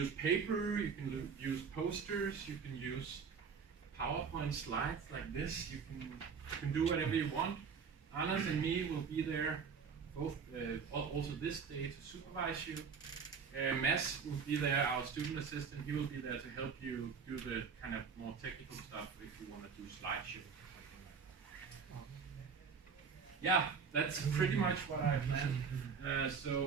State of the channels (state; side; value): quieter; left; 6.0 dB